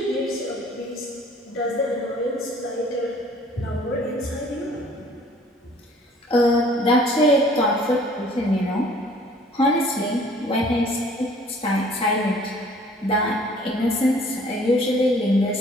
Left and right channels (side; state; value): both; normal; correlation 0.54